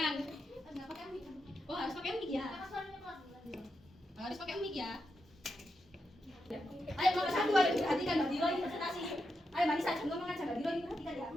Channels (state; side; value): normal; both; correlation 0.86